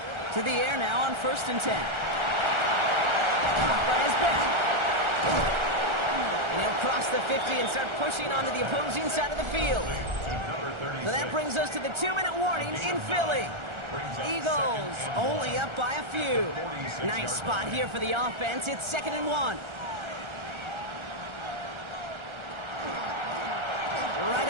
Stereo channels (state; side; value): late; left; 1.4 ms